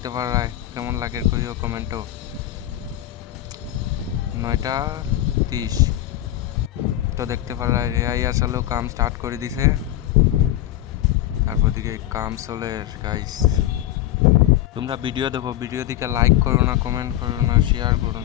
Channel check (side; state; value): right; quieter; 13.8 dB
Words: পারায় কেমন লাগে কইও কমেন্টও। 9:30। তো দেখতে পারায় রেয়াই আসলেও কাম স্টার্ট করে দিছে। তারপর দিকে কাম চলে গাইস। তোমরা ভিডিও দেখো, ভিডিও দিকে লাইক করো না, কমেন্ট করো না, শেয়ার করো